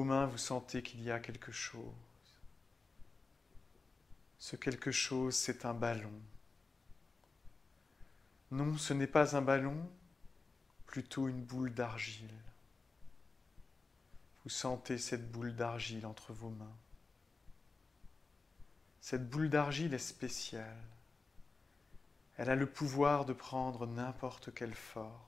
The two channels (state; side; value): quieter; right; 4.0 dB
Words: mains, vous sentez qu'il y a quelque chose. Ce quelque chose, c'est un ballon. Non, ce n'est pas un ballon, plutôt une boule d'argile. Vous sentez cette boule d'argile entre vos mains. Cette boule d'argile est spéciale. Elle a le pouvoir de prendre n'importe quelle forme.